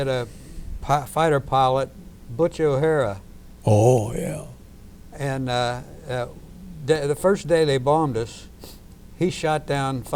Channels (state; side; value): identical; both; correlation 1.00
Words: a fighter pilot, Butch O'Hara. Oh, yeah. And the first day they bombed us, he shot down